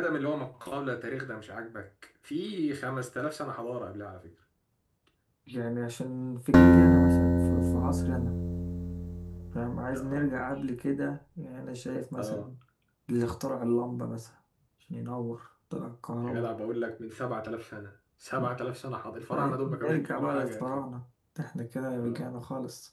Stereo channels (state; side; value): identical; both; correlation 1.00